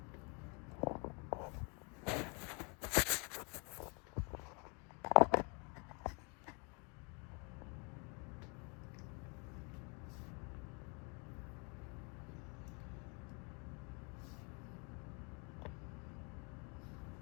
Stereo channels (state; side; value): quieter; right; 34.3 dB